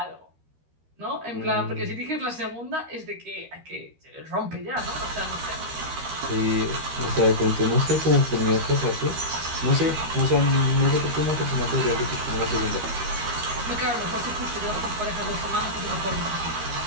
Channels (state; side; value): late; left; 13 ms